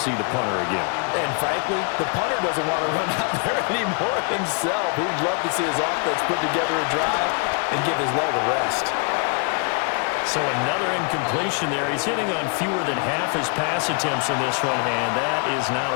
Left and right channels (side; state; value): right; quieter; 37.4 dB